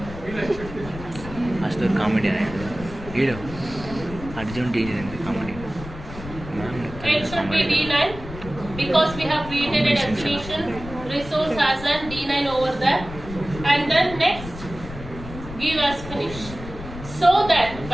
Astor comedian. Hero. Arjun D9 comedy. It should be D9 because we have created a destination resource as an D9 over there. And then next, give as finish. So that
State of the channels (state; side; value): noise; left; rumble, 12 dB below the sound